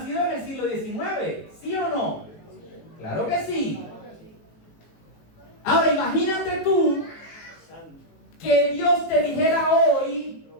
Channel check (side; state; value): right; late; 18 ms